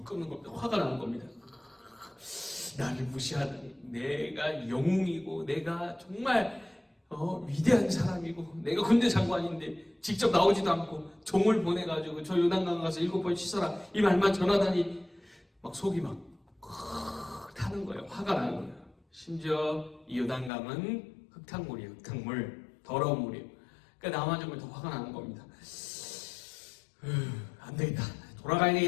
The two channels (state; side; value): drops out; right; at 20.5 s